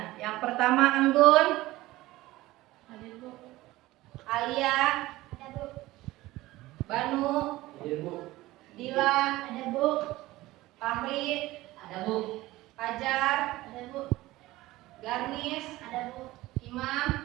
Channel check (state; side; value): quieter; left; 18.0 dB